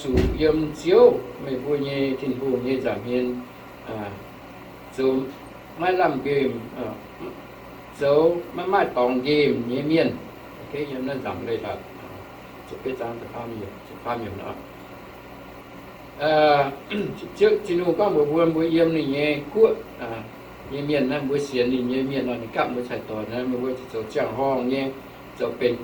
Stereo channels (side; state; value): both; identical; correlation 1.00